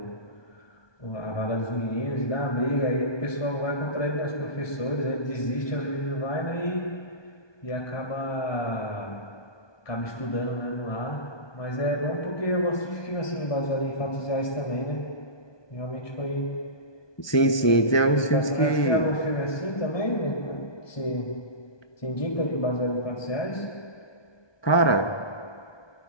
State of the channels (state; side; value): late; right; 1.2 ms